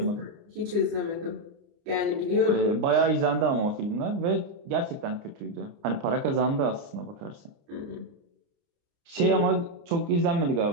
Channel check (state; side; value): late; left; 30 ms